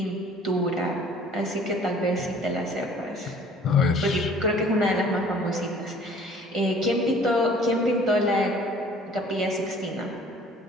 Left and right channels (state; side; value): normal; both; correlation 0.52